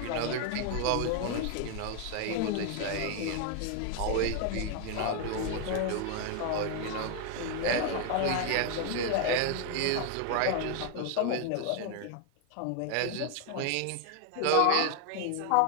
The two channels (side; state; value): both; different; correlation 0.00